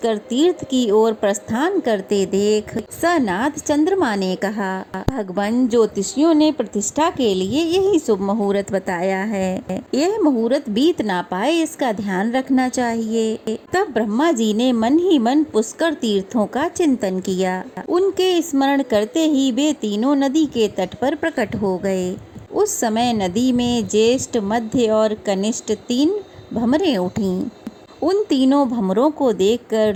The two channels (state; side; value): identical; both; correlation 1.00